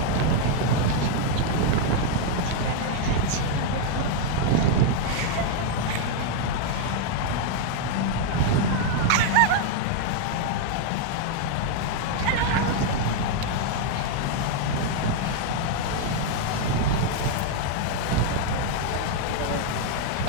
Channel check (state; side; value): different; both; correlation 0.00